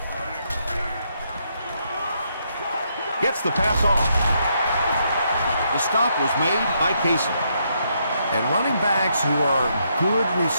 Gets the pass off. The stop was made by Casey. And running backs who are good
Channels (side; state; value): both; inverted; correlation -0.76